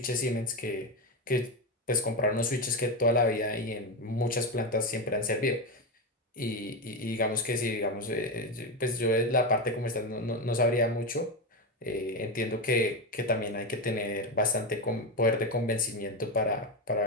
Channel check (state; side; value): normal; both; correlation 0.13